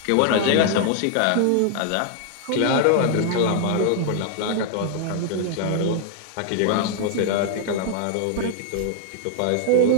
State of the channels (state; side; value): different; both; correlation 0.00